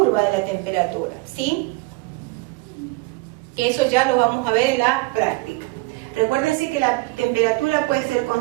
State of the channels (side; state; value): left; quieter; 24.0 dB